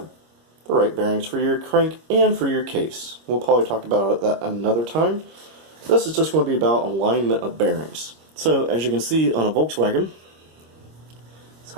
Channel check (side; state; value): left; late; 26 ms